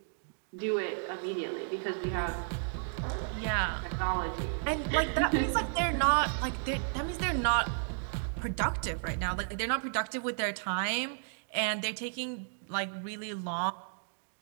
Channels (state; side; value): silent; left; digital silence